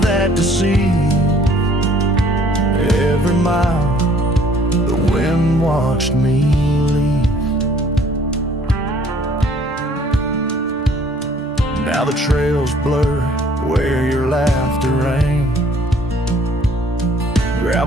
deceive. Every mile the wind watched me leave. Now the trails blur where your laughter rang,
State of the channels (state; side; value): normal; both; correlation 0.58